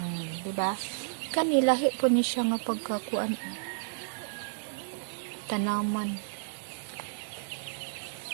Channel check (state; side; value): silent; left; 57 dB below the other